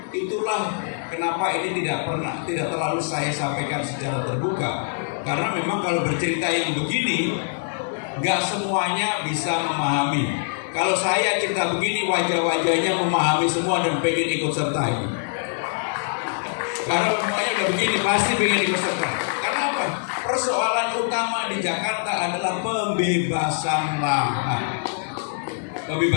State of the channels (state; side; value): silent; right; digital silence